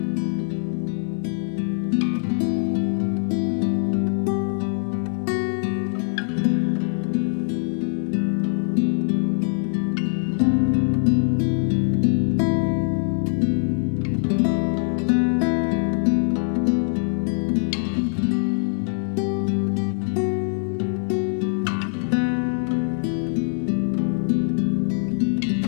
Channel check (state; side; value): silent; right; digital silence